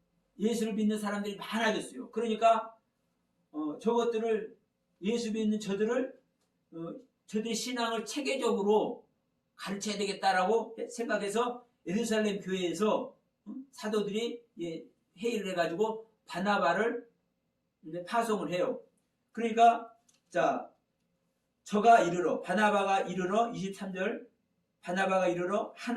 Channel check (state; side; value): identical; both; correlation 1.00